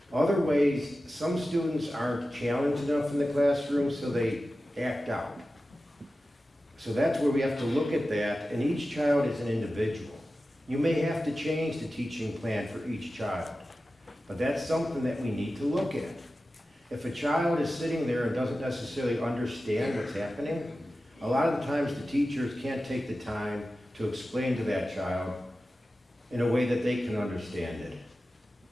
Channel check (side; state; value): both; normal; correlation 0.94